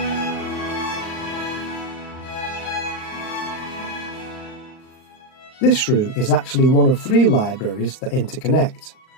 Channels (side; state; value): right; late; 39 ms